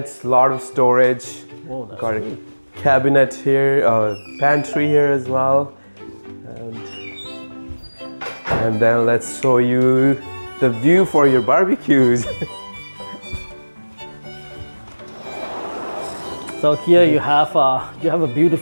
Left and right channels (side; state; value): both; inverted; correlation -1.00